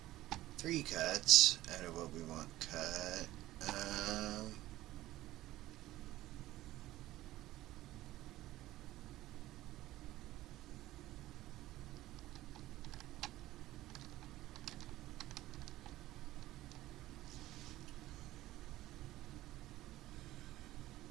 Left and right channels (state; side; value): quieter; left; 15.9 dB